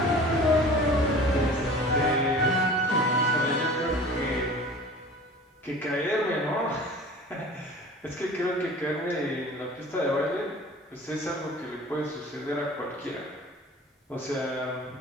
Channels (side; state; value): both; normal; correlation 0.42